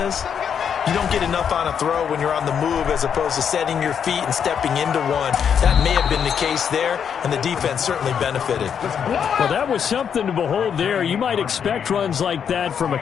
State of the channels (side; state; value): right; quieter; 7.7 dB